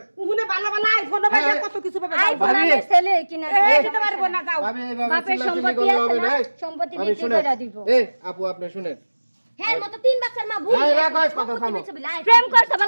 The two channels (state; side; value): inverted; both; correlation -1.00